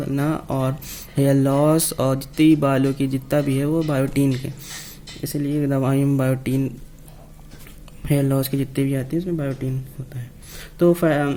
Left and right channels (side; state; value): both; identical; correlation 1.00